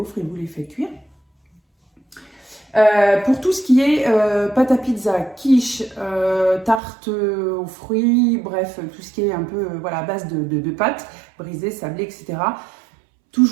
et vous les faites cuire. Pour tout ce qui est pâte à pizza, quiche, tarte aux fruits, bref, tout ce qui est un peu à base de pâtes brisées, sablées, etc.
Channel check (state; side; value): drops out; left; at 6.8 s